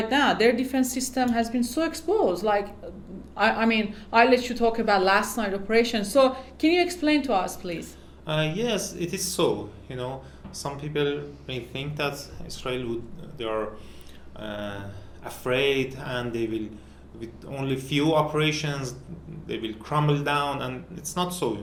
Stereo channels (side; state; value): both; identical; correlation 1.00